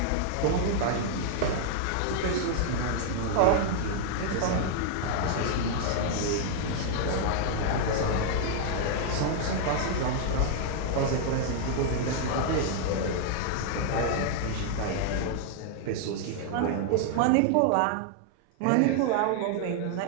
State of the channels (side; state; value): both; different; correlation 0.00